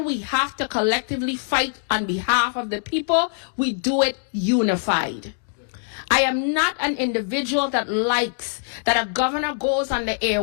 we have to collectively fight on behalf of the people, we do it unified. I am not an individual that likes that a governor goes on the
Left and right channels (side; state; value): right; silent; digital silence